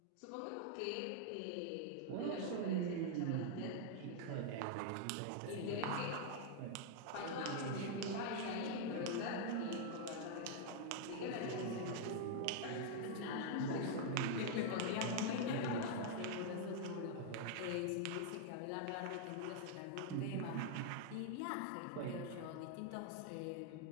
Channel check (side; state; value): both; different; correlation -0.01